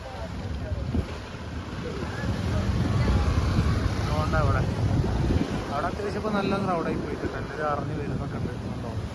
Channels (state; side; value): identical; both; correlation 1.00